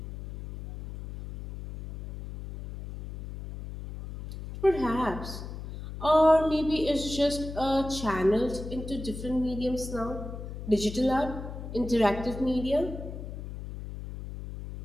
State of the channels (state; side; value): noise; left; hum, 9 dB below the sound